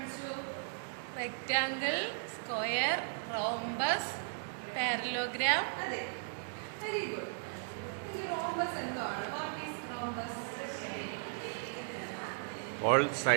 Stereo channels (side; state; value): left; silent; digital silence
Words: Rectangle, square, rhombus, parallelogram. അതെ, very good. Rhombus എന്താണ്? What is rhombus? All